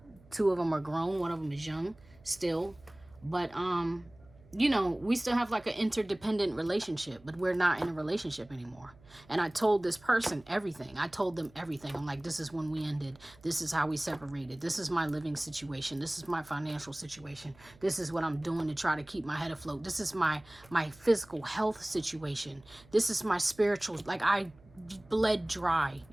2 of them are grown, 1 of them is young still. But you know, we still have like an interdependent relationship, but we're not in a relationship anymore. And I told this person everything. I told them everything. I'm like, this is when we ended. This is how we separated. This is my living situation. This is my financial situation. This is what I'm doing to try to keep my head afloat. This is my physical health situation. This is my spiritual, like I bled dry.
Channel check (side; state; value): right; noise; hum, 25 dB below the sound